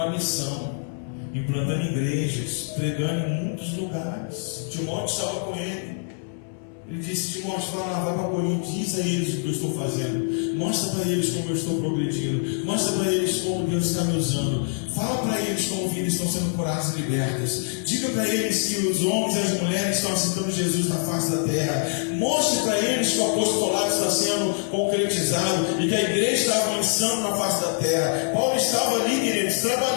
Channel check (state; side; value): silent; right; digital silence